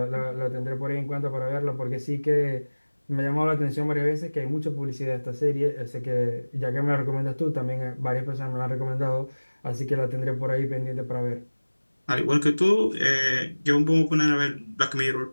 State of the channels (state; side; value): inverted; both; correlation -1.00